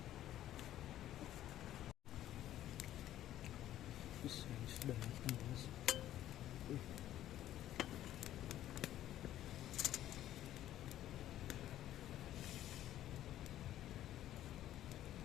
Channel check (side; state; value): right; quieter; 12.7 dB